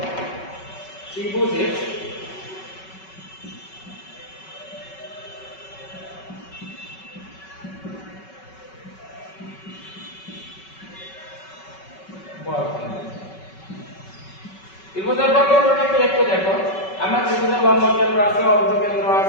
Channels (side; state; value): right; late; 5.3 ms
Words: ত্রিভুজের ত্রিভুজের বর্গকেন্দ্রটাকে একটু দেখো। আমরা ত্রিভুজের লম্ব কেন্দ্র আছে, অর্ধকেন্দ্র